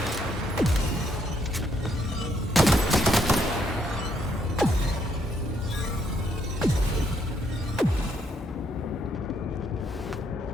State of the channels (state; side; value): normal; both; correlation 0.72